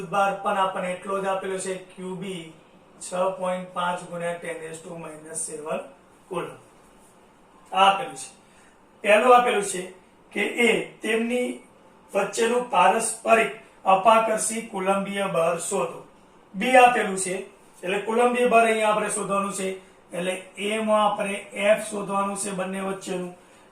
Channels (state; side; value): identical; both; correlation 1.00